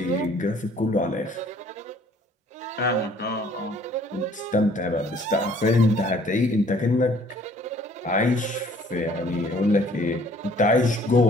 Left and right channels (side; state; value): both; normal; correlation 0.58